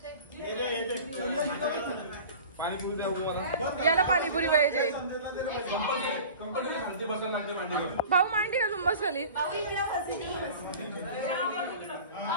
याला पाणीपुरी पाहिजे. भाऊ मांडी का जुंबस खाली.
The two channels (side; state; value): both; inverted; correlation -0.40